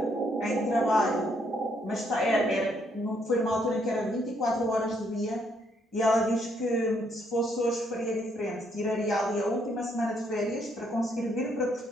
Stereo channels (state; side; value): normal; both; correlation 0.72